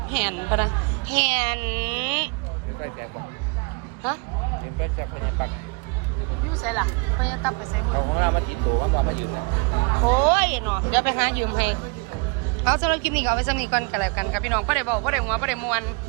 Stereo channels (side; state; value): left; quieter; 32.3 dB